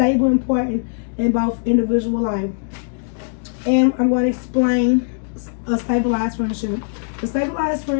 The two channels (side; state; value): right; silent; digital silence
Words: and important in both individual life. And I'm going to explain a stabilized friendship. The stabilized